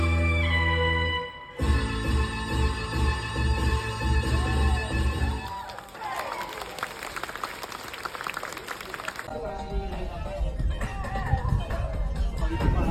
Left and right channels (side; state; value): both; identical; correlation 1.00